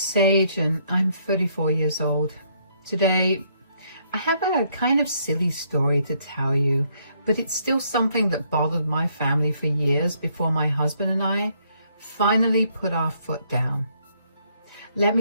and I'm 34 years old. Today, I have a kind of silly story to tell you, but it's still something that bothered my family for years before my husband and I finally put our foot down. Let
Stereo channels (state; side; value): inverted; both; correlation -0.70